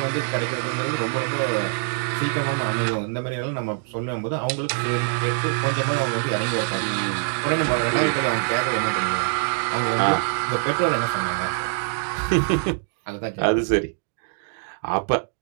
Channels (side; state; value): left; silent; 63 dB below the other